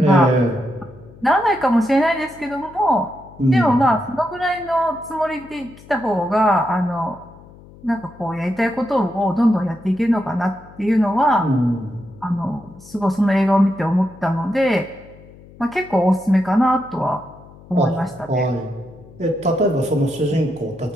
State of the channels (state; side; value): noise; left; hum, 22 dB below the sound